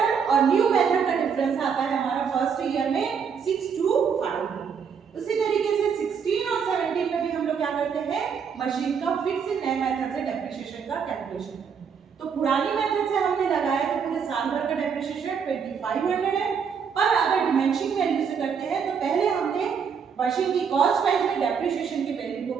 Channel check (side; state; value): left; quieter; 6.7 dB